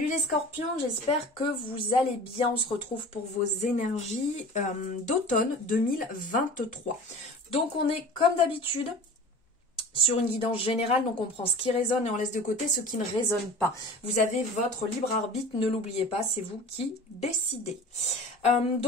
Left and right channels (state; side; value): normal; both; correlation 0.38